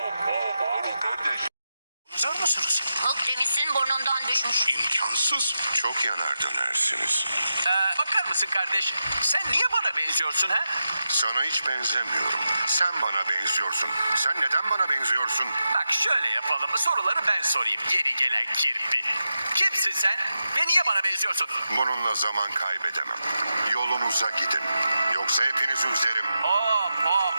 Bağırın kardeş. Hazır mısınız? Akdeniz'in burnundan düşmüş. İmkansız. Çok yanar dönersiniz. Bakar mısın kardeş? Sen niye bana benziyorsun ha? Sana hiç benzemiyorum. Sen bana benziyorsun. Sen neden bana benziyorsun? Bak şöyle yapalım. Soruları ben sorayım. Geri gelen kirpi. Kimsin sen? Ve niye bana benziyorsun? Bununla zaman kaybedemem. Yolunuza gidin. Yoksa hepinizi üzerim.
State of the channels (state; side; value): inverted; both; correlation -0.89